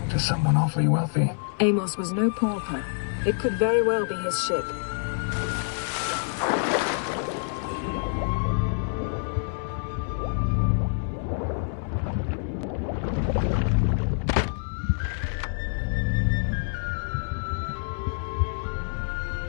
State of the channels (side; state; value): right; silent; 60 dB below the other